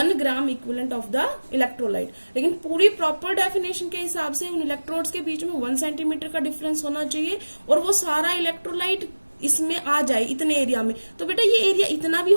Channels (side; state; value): both; inverted; correlation -1.00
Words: gram equivalent of the electrolyte. लेकिन पूरी प्रॉपर डेफिनेशन के हिसाब से उन इलेक्ट्रोड्स के बीच में 1 सेंटीमीटर का डिफरेंस होना चाहिए और वो सारा इलेक्ट्रोलाइट इसमें आ जाए इतने एरिया में। तो बेटा ये एरिया इतना भी